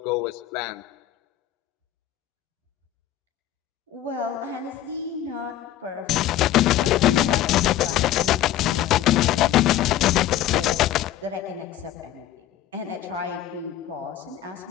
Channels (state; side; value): quieter; right; 12.3 dB